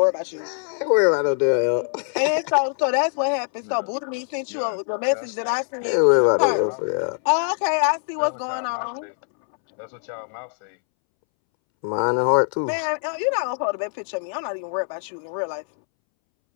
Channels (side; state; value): right; silent; 63 dB below the other